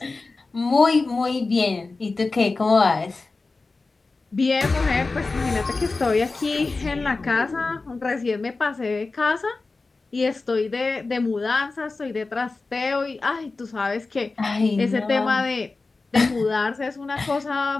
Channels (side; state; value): right; quieter; 3.7 dB